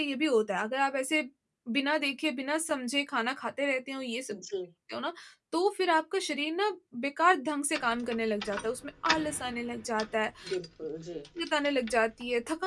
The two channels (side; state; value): both; identical; correlation 1.00